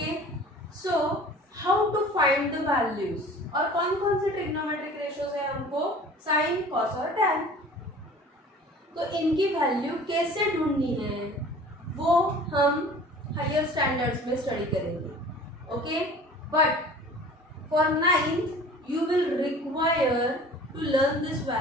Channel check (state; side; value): normal; both; correlation 0.45